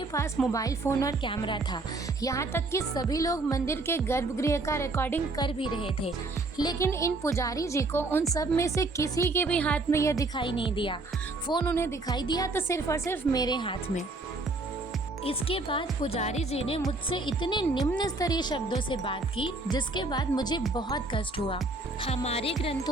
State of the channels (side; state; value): left; quieter; 3.2 dB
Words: पास मोबाइल फ़ोन और कैमरा था, यहाँ तक कि सभी लोग मंदिर के गर्भगृह का रिकॉर्डिंग कर भी रहे थे, लेकिन इन पुजारी जी को उन सब में से किसी के भी हाथ में यह दिखाई नहीं दिया। फ़ोन उन्हें दिखाई दिया तो सिर्फ और सिर्फ मेरे हाथ में। इसके बाद पुजारी जी ने मुझसे इतने निम्न स्तरीय शब्दों से बात की, जिसके बाद मुझे बहुत कष्ट हुआ। हमारे